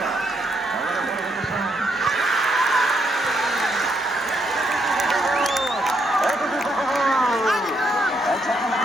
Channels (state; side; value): normal; both; correlation 0.76